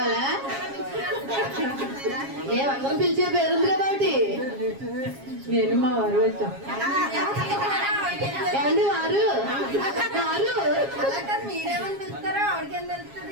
మేమందరం పిలిచే పేరుంది కదా ఒకటి. నేను మా వారు వచ్చాం. ఏమండి వారు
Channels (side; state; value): left; late; 7.3 ms